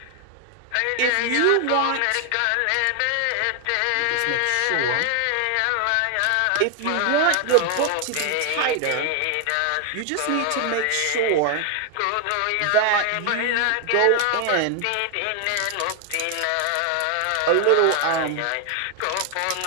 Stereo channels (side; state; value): both; different; correlation 0.00